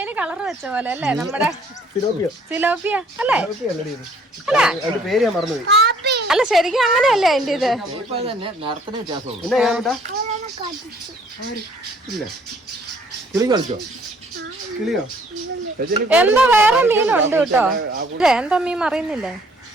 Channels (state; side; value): normal; both; correlation 0.60